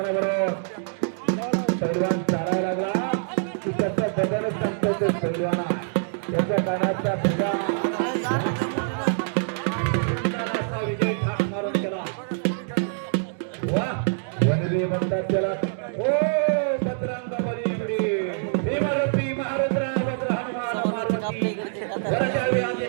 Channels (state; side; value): silent; left; digital silence